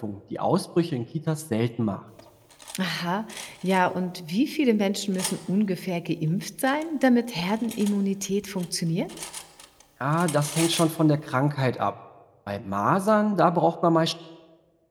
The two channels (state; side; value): identical; both; correlation 1.00